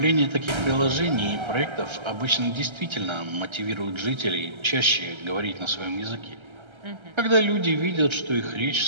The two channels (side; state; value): left; late; 1.3 ms